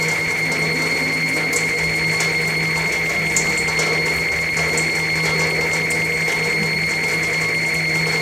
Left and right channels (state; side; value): identical; both; correlation 1.00